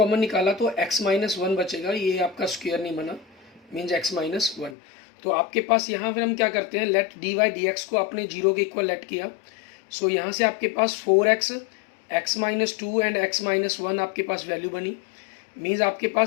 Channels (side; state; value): right; drops out; at 4.8 s